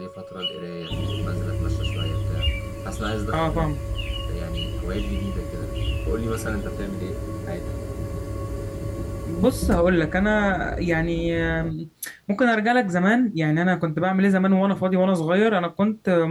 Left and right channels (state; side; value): identical; both; correlation 1.00